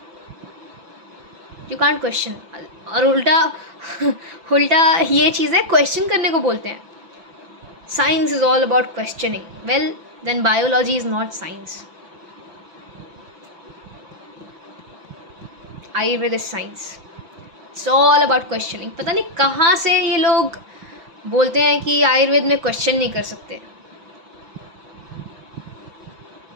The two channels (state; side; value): late; left; 5.9 ms